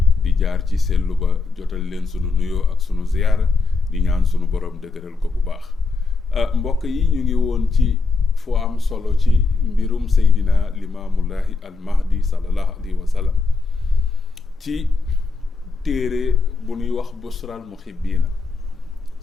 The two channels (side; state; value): right; quieter; 4.2 dB